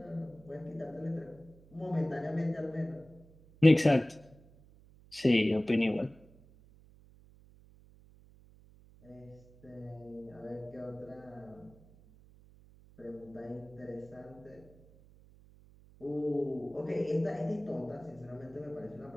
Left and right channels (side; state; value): right; noise; hum, 24 dB below the sound